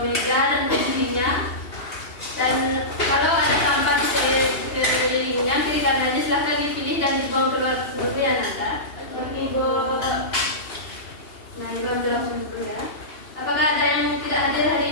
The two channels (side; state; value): right; late; 2.8 ms